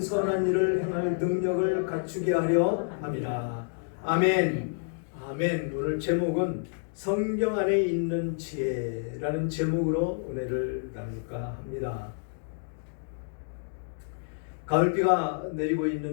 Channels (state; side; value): silent; right; digital silence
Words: 일을 행할 능력을 갖추게 하려 함이라. 아멘. 아멘. 오늘 제목은 성경 안에 있는 지혜라는 제목으로 은혜를 나눌까 합니다. 가을비가 내리고